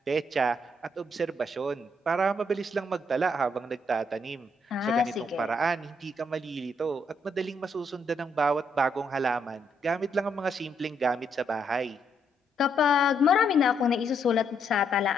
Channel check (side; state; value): both; normal; correlation 0.74